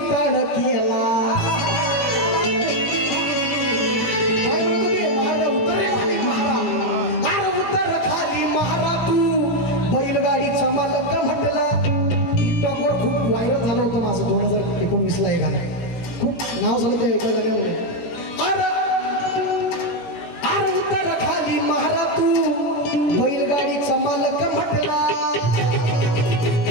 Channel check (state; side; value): late; right; 17 ms